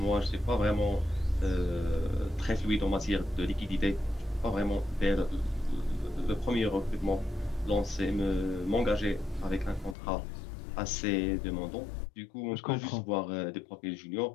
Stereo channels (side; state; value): right; drops out; at 10.0 s